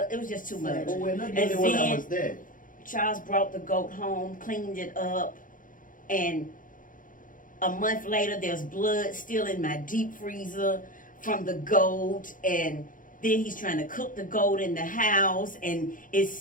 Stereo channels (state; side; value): late; right; 0.39 ms